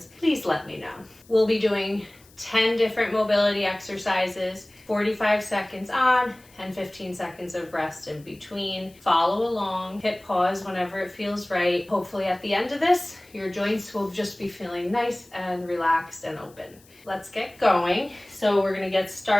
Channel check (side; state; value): left; noise; hiss, 27 dB below the sound